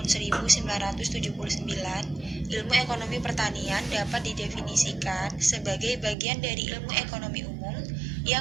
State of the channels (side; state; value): left; drops out; at 6.2 s